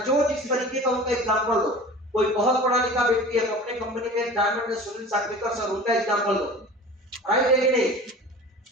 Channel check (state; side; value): normal; both; correlation 0.39